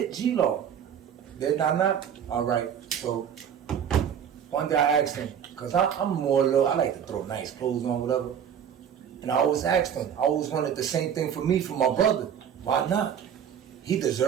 G-Law. Did I not? All right. So one day I asked him, cause I'm more little. I like to throw nice clothes on, whatever. And I always asked him. I always wanted the same thing for me, for my brother. Why not? he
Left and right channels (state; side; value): quieter; left; 8.5 dB